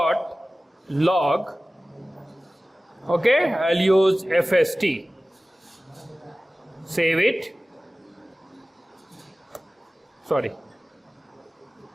log. Okay, I'll use FST. Save it. Sorry.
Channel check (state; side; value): normal; both; correlation 0.97